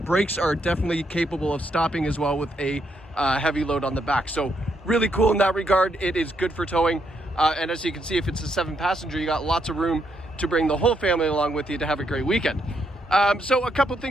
Brakes are definitely capable of stopping as well with a heavy load on the back. So really cool in that regard. It is good for towing. And as you can see, if it's a 7-passenger, you got lots of room to bring the whole family along with you to have a great weekend. So a couple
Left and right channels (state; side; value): normal; both; correlation 0.77